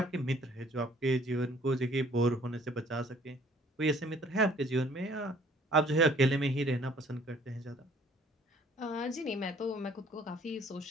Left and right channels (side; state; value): both; normal; correlation 0.58